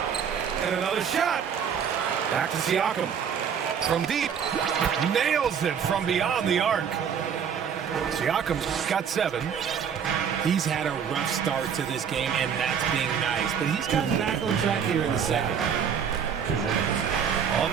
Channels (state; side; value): quieter; left; 7.5 dB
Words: And another shot. Back to Siakam. From deep. Nails it from beyond the arc. Siakam's got 7. He's had a rough start to this game, and that's being nice. But he's gotten back on track here in the second. On